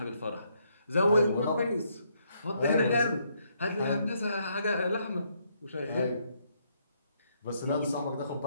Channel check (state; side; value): inverted; both; correlation -0.73